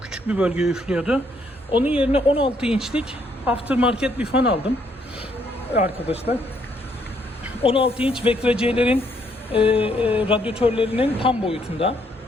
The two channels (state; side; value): normal; both; correlation 0.70